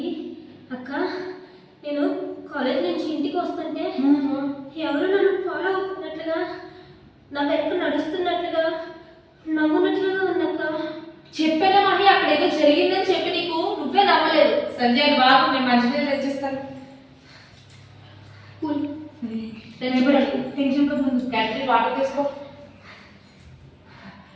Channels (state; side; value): identical; both; correlation 1.00